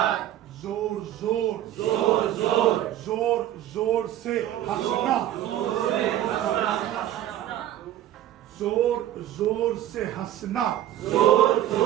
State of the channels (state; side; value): quieter; left; 12.7 dB